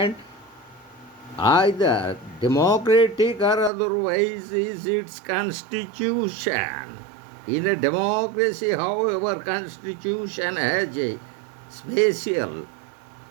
either democratic or otherwise, is its constitution. In a democracy, however, constitution has a special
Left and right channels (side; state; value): left; drops out; at 3.7 s